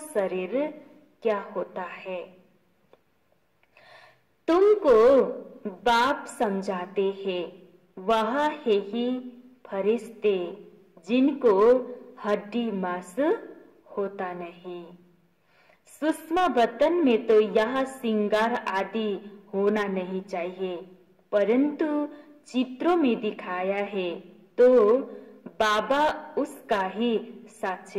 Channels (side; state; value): both; identical; correlation 1.00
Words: शरीर क्या होता है। तुमको बाप समझाते हैं, वह है ही फरिश्ते जिनको हड्डी मांस होता नहीं। सूक्ष्म बतन में तो यह श्रृंगार आदि होना नहीं चाहिए, परंतु चित्रों में दिखाया है तो बाबा उसका ही